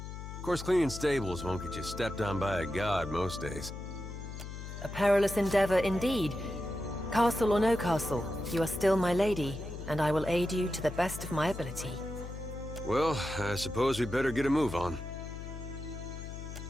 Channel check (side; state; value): left; noise; hum, 9 dB below the sound